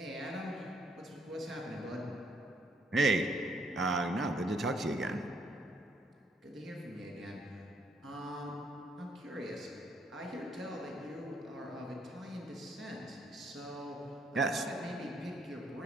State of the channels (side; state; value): both; normal; correlation 0.70